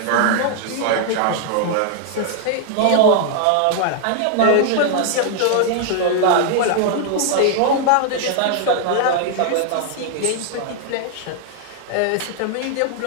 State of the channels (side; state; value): both; different; correlation 0.00